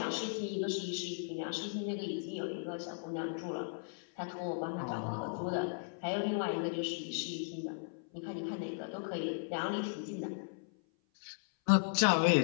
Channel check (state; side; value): silent; right; 53 dB below the other